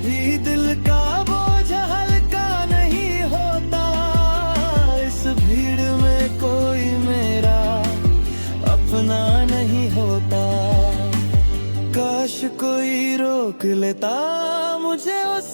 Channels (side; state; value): both; inverted; correlation -1.00